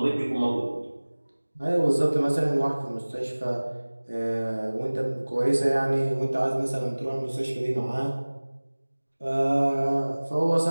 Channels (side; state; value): both; inverted; correlation -1.00